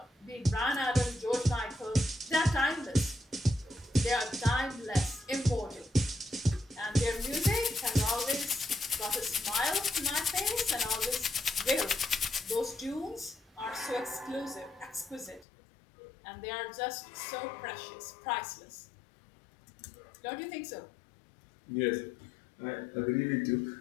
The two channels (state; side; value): drops out; right; at 15.5 s